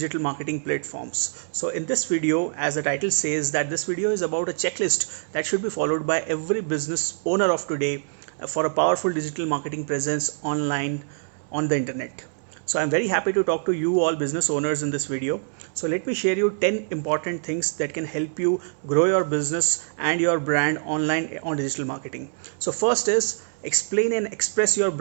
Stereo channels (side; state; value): left; silent; 62 dB below the other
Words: marketing platforms. So in this video, as the title says, that this video is about a checklist that should be followed by every business owner of today for a powerful digital marketing presence online on the internet. So I'm very happy to talk to you all business owners in this video. So let me share you 10 important things that can help you grow your business and your brand online on digital marketing. So first is explain and express your